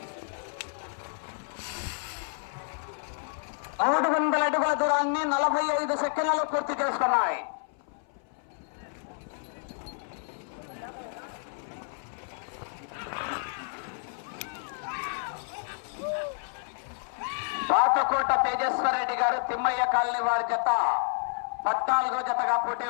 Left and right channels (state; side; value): silent; right; 57 dB below the other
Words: మూడు వందల అడుగుల దూరాన్ని 45 సెకండ్లలో పూర్తి చేసుకున్నాయి. పాతకోట తేజేశ్వర రెడ్డి గారు తిమ్మయ్య కాలనీ వారి జత 14వ జతగా